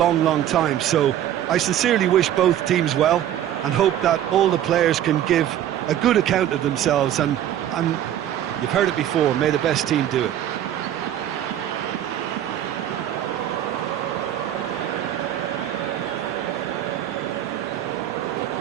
long time, so I sincerely wish both teams well and hope that all the players can give a good account of themselves, and you've heard it before, may the best team do it.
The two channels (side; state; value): left; quieter; 11.4 dB